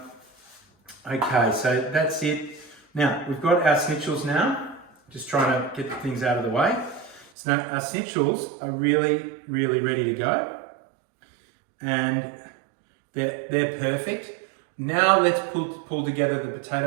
Okay, so that's it. Now, we've got our schnitzels now. Just trying to get things out of the way. So now our schnitzels are really, really ready to go. And they're perfect. Now let's pull together the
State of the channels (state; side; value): drops out; left; at 7.3 s